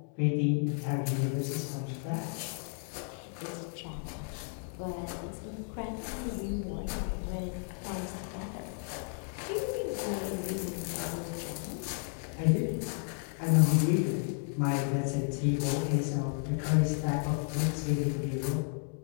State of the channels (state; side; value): silent; right; 56 dB below the other